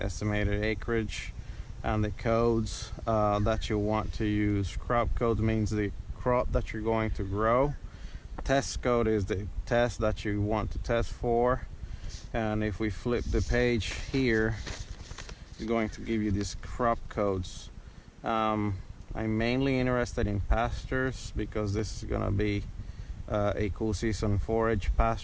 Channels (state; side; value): identical; both; correlation 1.00